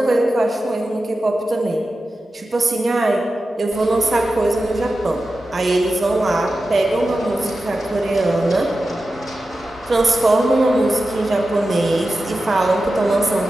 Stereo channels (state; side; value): normal; both; correlation 0.93